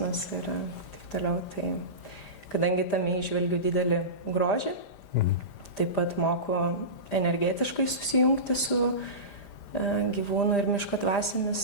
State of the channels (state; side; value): late; right; 5.0 ms